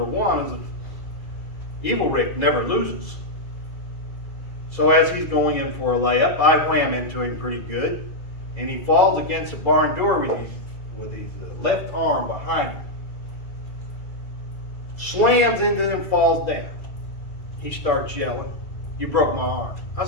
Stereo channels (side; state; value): right; late; 2.4 ms